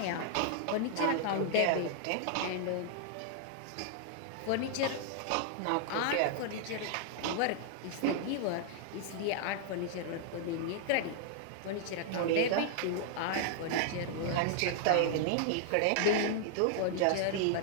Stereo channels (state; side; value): different; both; correlation -0.01